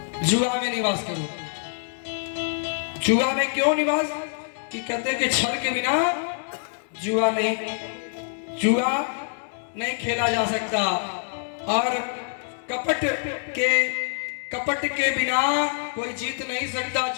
जुआ में निवास करो। जुआ में क्यों निवास, कि कहते हैं कि छल के बिना जुआ नहीं खेला जा सकता, और कपट के बिना कोई जीत नहीं सकता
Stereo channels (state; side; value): silent; right; digital silence